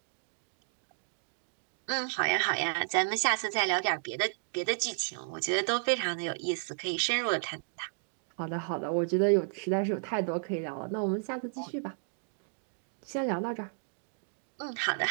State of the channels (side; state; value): left; silent; digital silence